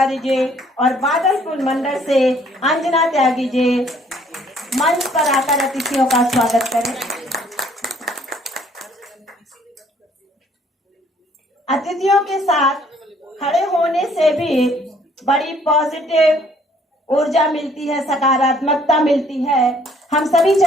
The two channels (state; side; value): normal; both; correlation 0.61